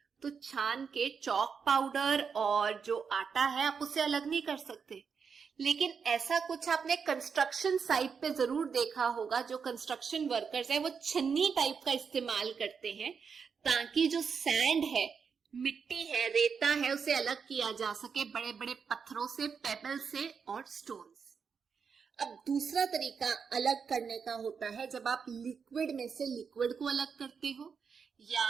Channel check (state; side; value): quieter; left; 6.1 dB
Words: तो छान के चौक पाउडर और जो आटा है आप उसे अलग नहीं कर सकते। लेकिन ऐसा कुछ आपने कंस्ट्रक्शन साइट पे जरूर देखा होगा, जो कंस्ट्रक्शन वर्कर्स है वो छन्नी टाइप का इस्तेमाल करते हैं ताकि जो सैंड है, मिट्टी है, रेता है, उसे अलग किया जा सके बड़े बड़े पत्थरों से, पेबल से और स्टोन से। अब दूसरा तरीका अलग करने का होता है जब आप लिक्विड में से लिक्विड को अलग करते हो